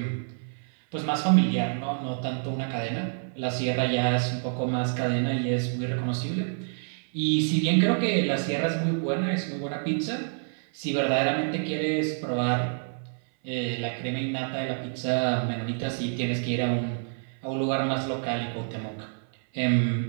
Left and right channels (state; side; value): silent; left; 60 dB below the other